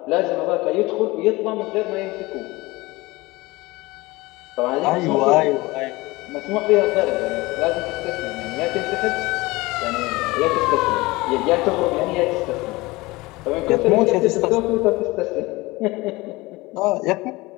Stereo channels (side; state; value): right; quieter; 21.7 dB